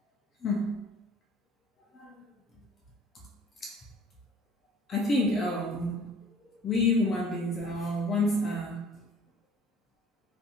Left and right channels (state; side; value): normal; both; correlation 0.51